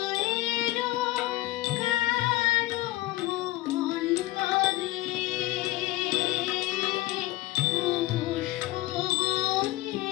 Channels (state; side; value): quieter; right; 18.2 dB